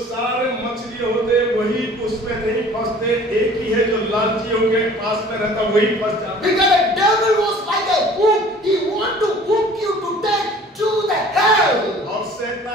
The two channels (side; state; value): both; normal; correlation 0.49